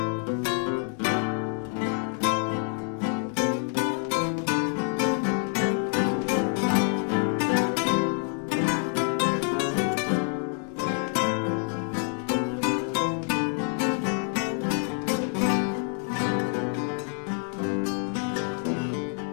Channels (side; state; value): right; quieter; 39.8 dB